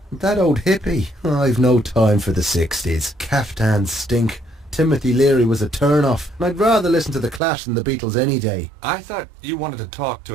That old hippie. I've no time for the 60s. Caftans stink. Timothy Leary was a turn-off. And I'd rather listen to The Clash than the Beatles any day. I thought you wanted to talk to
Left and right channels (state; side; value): drops out; left; at 7.4 s